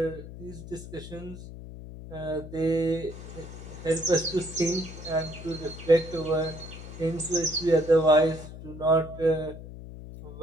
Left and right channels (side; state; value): left; noise; hum, 13 dB below the sound